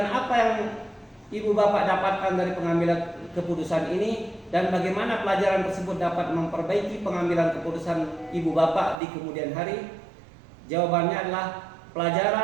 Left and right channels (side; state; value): left; drops out; at 9.0 s